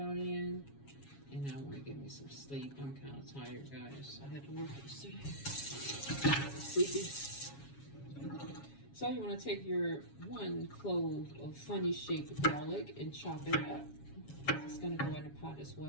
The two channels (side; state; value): right; late; 7.2 ms